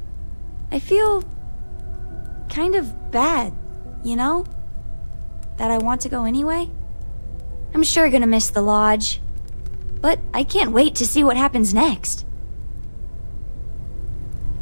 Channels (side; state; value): both; inverted; correlation -1.00